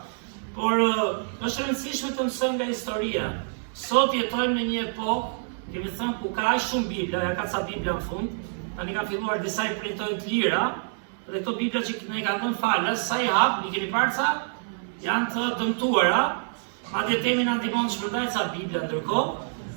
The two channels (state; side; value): silent; left; digital silence